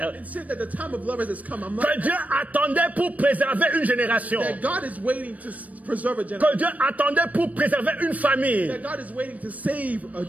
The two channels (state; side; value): late; left; 0.071 ms